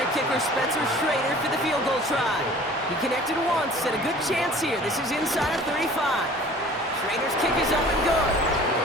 kicker, Spencer Schrader, for the field goal try. He connected once, and a good chance here. This is inside of 35. Schrader's kick is up and good.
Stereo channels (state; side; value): normal; both; correlation 0.47